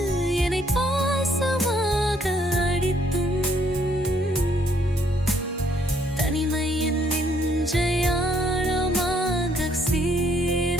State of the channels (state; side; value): normal; both; correlation 0.68